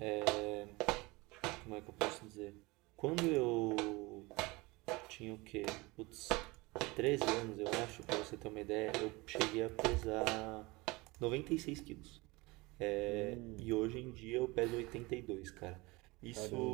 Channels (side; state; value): left; quieter; 23.6 dB